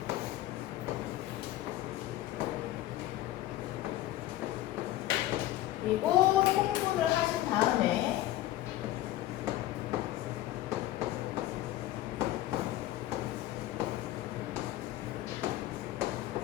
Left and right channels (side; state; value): right; quieter; 14.7 dB